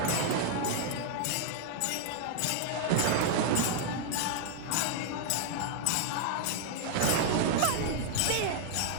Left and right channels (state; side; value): different; both; correlation 0.00